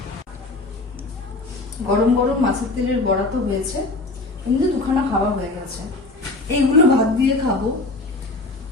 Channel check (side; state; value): right; quieter; 3.1 dB